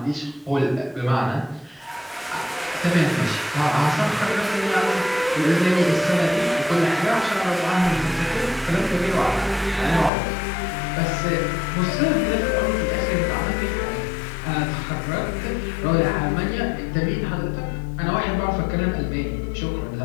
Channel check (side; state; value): right; drops out; at 10.1 s